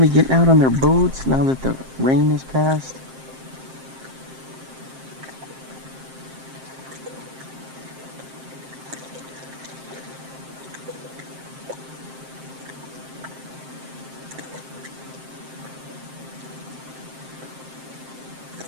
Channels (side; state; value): left; late; 7.6 ms